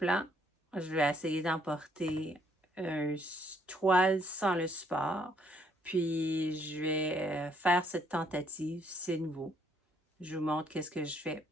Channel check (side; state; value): both; normal; correlation 0.68